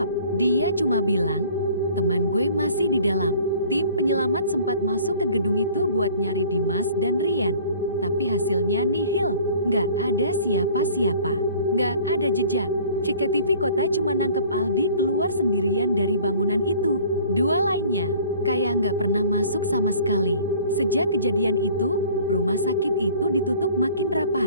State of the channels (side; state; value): both; inverted; correlation -0.50